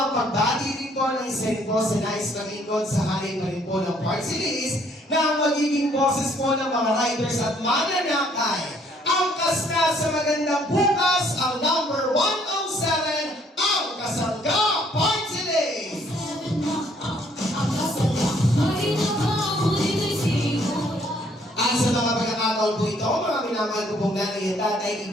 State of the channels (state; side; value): normal; both; correlation 0.64